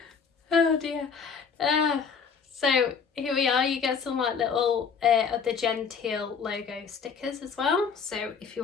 Oh dear. So here we are, you get some like little of the Genteel logo stickers as well, so if you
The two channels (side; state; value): right; quieter; 6.0 dB